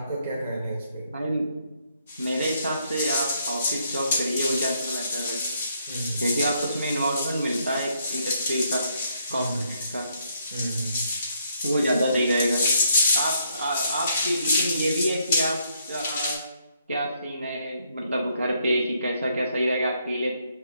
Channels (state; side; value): inverted; both; correlation -0.72